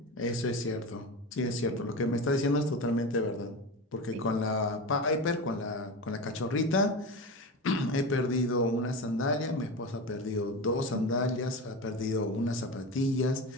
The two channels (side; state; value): both; normal; correlation 0.24